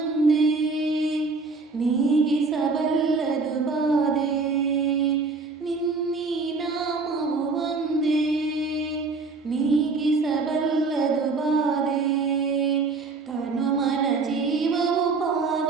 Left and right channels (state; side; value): quieter; left; 4.1 dB